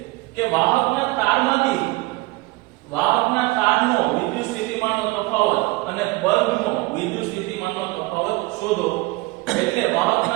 કે વાહકના તારનો વિદ્યુત સ્થિતિમાનનો તફાવત અને બલ્બનો વિદ્યુત સ્થિતિમાનનો તફાવત શોધો. એટલે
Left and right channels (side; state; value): left; quieter; 22.5 dB